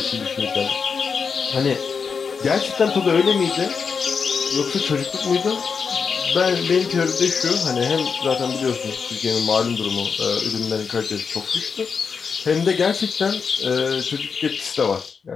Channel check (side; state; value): right; quieter; 5.7 dB